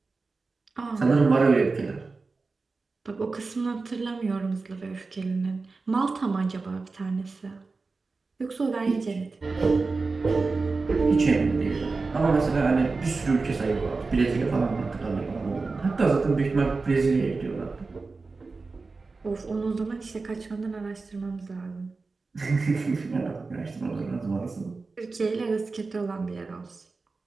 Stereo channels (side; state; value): left; quieter; 4.0 dB